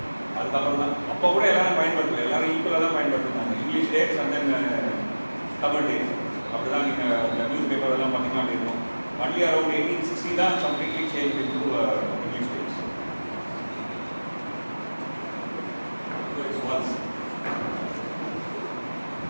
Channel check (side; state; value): both; inverted; correlation -1.00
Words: அதுக்கப்புறம் தான் அப்போ கூட எல்லாரும் பயன்படுத்தல, எல்லாரும் ஈக்குவலாக தான் பயன்படுத்தினாங்க. English dates and then Tamil டேட்ஸ். அப்படி தான் நீங்கள் நியூஸ் பேப்பர் எல்லாம் பார்த்தீங்கன்னா அப்படி இருக்கும். ஒன்லி அரௌண்ட் 1860 தான் completely change into English dates. So it's once